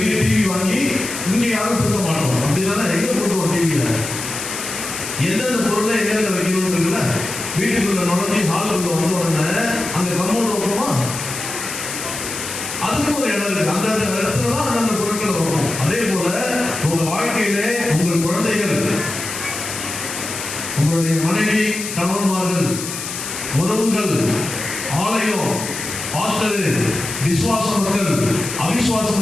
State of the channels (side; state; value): left; noise; hiss, 7 dB below the sound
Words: டிவி வாங்கி இங்க யாரும் கொடுக்க மாட்டோம். அப்படிதானே? எங்க போட்டுவோம் டிவியில? எந்தெந்த பொருளை எங்க வைக்கணும் இருக்குல்ல? வீட்டுக்குள்ள நுழைஞ்சி ஹாலுக்குள்ள வந்த உடனே அந்த கம்மோடு வைப்போமா? அதுக்கும் ஒரு இடம் இருக்கு. அந்த இடத்துல தான் அந்தந்த பொருட்களை வைப்போம். அதே போல உங்க வாழ்க்கையிலே உங்கள் குழந்தைகள், உங்களுடைய மனைவி, கணவன்மார்கள், உறவுகள், ஆலயம், ஹாஸ்டல், விசுவாச மக்கள்,